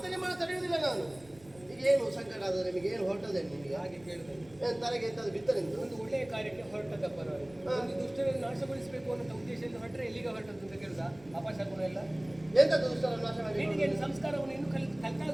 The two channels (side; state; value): right; noise; rumble, 25 dB below the sound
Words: ನಿಮ್ಮನ್ನು ತಡೆಯುವುದಿಲ್ಲ ನಾನು ಈಗ ಏನು ಸಂಕಟ ಆದ ನಿಮಗೆ ಏನು ಹೊರಟದೆ ನಿಮಗೆ ಹಾಗೆ ಕೇಳಿದೆ ತಲೆಗೆ ಎಂತಾದ್ರು ಬಿತ್ತನೆಂದು ಒಂದು ಒಳ್ಳೆಯ ಕಾರ್ಯಕ್ಕೆ ಹೊರಟದಪ್ಪ ನಾನು ಒಂದು ದುಷ್ಟರನ್ನು ನಾಶಗೊಳಿಸಬೇಕು ಅನ್ನೋ ಉದ್ದೇಶದಿಂದ ಹೊರಟ್ರೆ ಎಲ್ಲಿಗೆ ಹೊರಟದ್ದು ಅಂತ ಕೇಳಿದ ಅಪಶಕುನ ಎಲ್ಲ ಎಂತದ್ದು ದುಷ್ಟರನ್ನು ನಾಶ ಮಾಡಿ ಹೆಣ್ಣಿಗೆ ಸಂಸ್ಕಾರವನ್ನು ಇನ್ನೂ